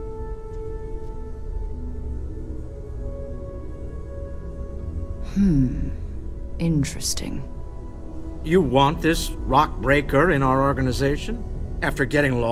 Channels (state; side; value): identical; both; correlation 1.00